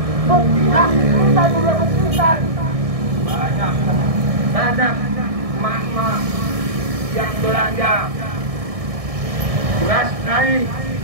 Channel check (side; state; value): left; late; 1.6 ms